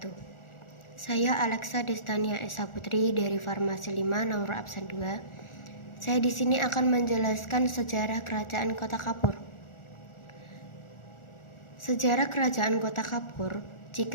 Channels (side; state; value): right; late; 1.4 ms